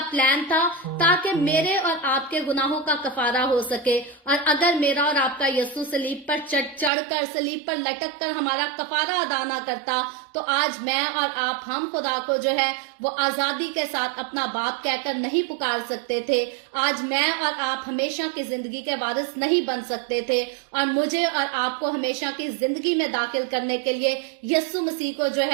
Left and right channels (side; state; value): left; drops out; at 6.9 s